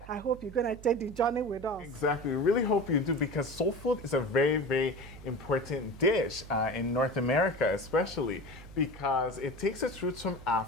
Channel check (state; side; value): noise; right; hum, 16 dB below the sound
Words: I hope you're going to take the journey with us. Exactly. We really hope you do, because soul food is a very, very important dish in North America, especially because it takes its roots from